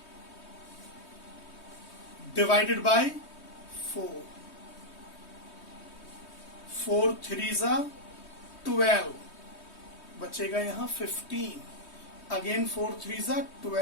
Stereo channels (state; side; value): late; right; 3.2 ms